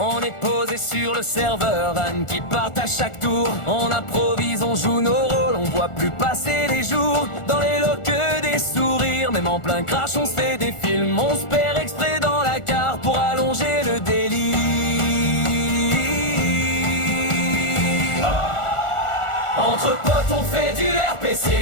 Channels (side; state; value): right; late; 1.4 ms